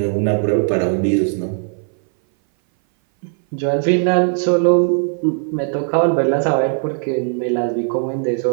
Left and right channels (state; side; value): silent; left; 59 dB below the other